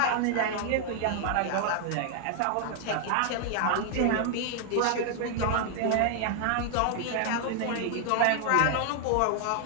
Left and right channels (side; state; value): both; different; correlation 0.00